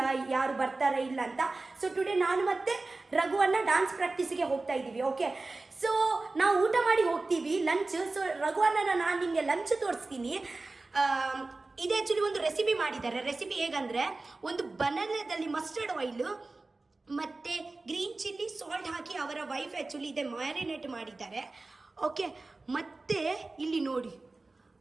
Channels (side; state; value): left; quieter; 3.4 dB